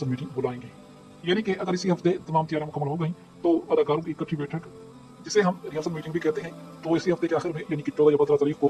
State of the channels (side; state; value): both; identical; correlation 1.00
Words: मीटिंग बुलाएंगे। यानी कि अगर इसी हफ्ते तमाम तैयारियां मुकम्मल हो गई तो अदाकारों की इकट्ठी बैठक, जिसे हम रिहर्सल मीटिंग भी कहते हैं, तो इसी हफ्ते के आखिर में यानी कि 14 या 15 तारीख को